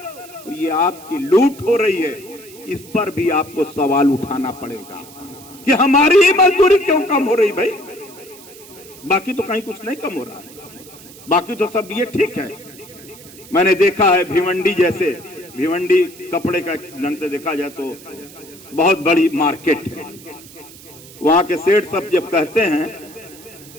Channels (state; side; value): noise; right; hiss, 20 dB below the sound